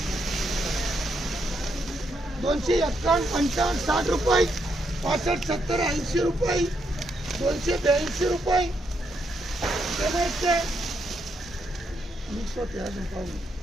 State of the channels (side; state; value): both; normal; correlation 0.78